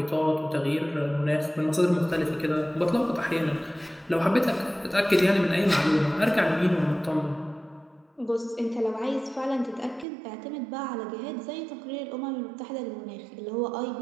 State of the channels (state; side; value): drops out; left; at 10.1 s